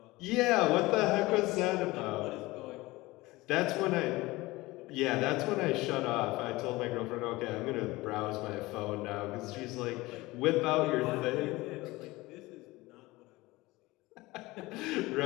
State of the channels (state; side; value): quieter; right; 20.4 dB